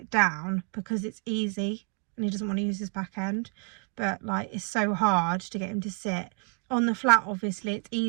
down because it's easy and he doesn't want to use his back end. But like it's so hard to get him to sit. On the flat obviously it's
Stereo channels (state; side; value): quieter; left; 36.0 dB